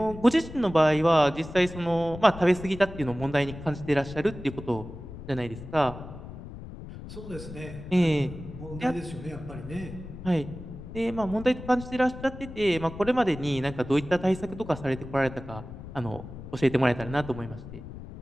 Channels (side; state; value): left; noise; rumble, 12 dB below the sound